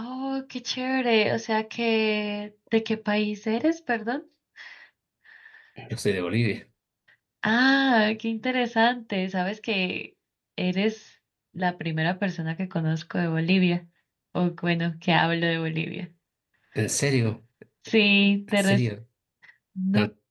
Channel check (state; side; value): identical; both; correlation 1.00